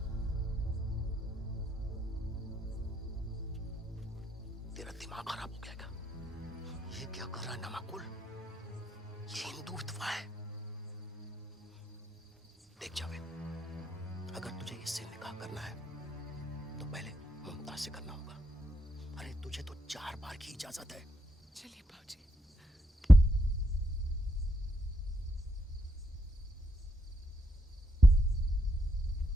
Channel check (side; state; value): both; normal; correlation 0.80